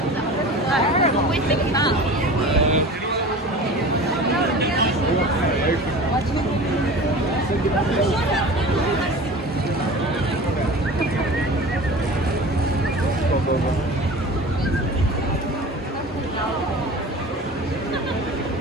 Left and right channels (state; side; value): normal; both; correlation 0.37